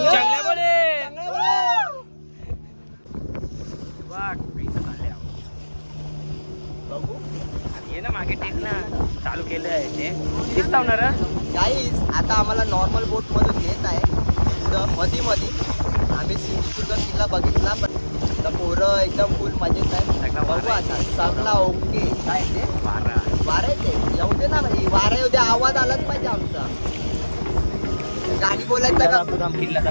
चांगला बोले. बघू ये ना मागे टेक ना. चालू केलं आहे ते दिसत होणार. गाईज आता आम्हाला नॉर्मल बोट मधून येत आहे. मधी मधी आम्ही सिंधुदुर्ग किल्ला बघितला पण पोरं एकदम फुल मजेत आहे. बघू आता सगळा ओके. काय ते वारा येते. येऊ दे ना भाई. वारा येऊ दे. आवाज आलाच पाहिजे आमचा. गाडी बोलायचा का? किल्ला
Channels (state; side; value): inverted; both; correlation -1.00